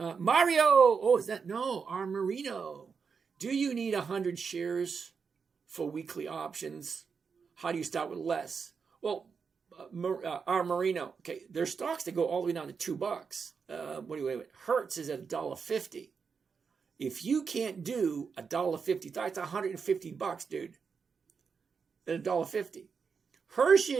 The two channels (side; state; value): left; quieter; 5.7 dB